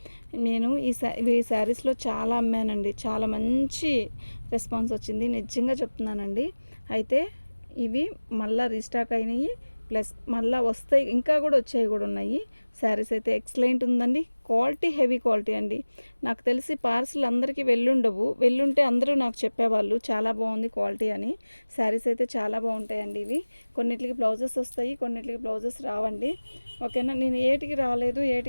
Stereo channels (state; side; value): inverted; both; correlation -1.00